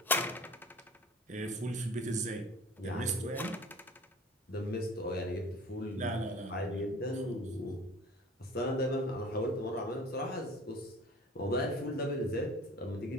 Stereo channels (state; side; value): normal; both; correlation 0.44